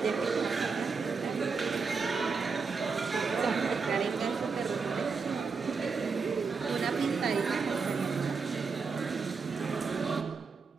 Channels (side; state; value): left; quieter; 5.0 dB